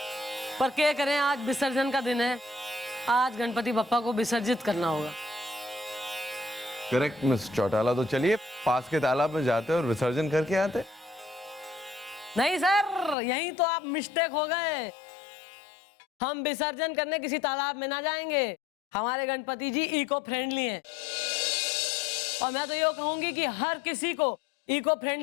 पर क्या करें, आज विसर्जन का दिन है। आज गणपति बप्पा को विसर्जित करना होगा। करेक्ट मिस चौटाला, तो चलिए पास के तालाब में जाते और विसर्जन करके आते। नहीं सर, यही तो आप मिस्टेक हो गए। हम विसर्जन करने किसी तालाब में ना जाएंगे। हमारे गणपति जी इको फ्रेंडली हैं, और मैं तो ये कहूंगी कि हर किसी को इको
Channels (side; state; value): right; drops out; at 13.2 s